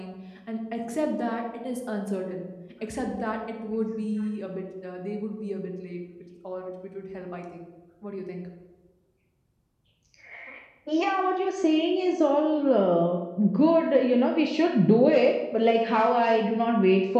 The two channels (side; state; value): both; identical; correlation 1.00